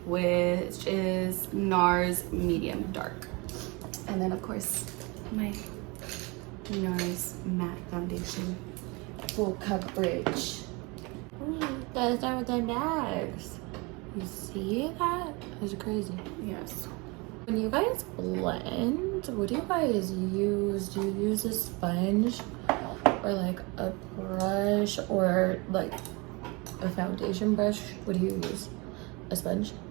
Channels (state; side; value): quieter; left; 27.4 dB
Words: which is NARS Medium Dark. And then of course, my NARS Matte Foundation. full coverage. Ooh, that's not with the bags. You see that? That's crazy. Yes. When you guys blend, what do you guys use? Do you use a sponge or like a brush or like a foundation brush? What do you use? A sponge?